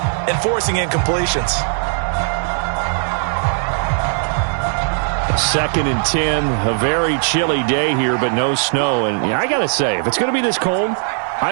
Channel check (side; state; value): left; silent; 67 dB below the other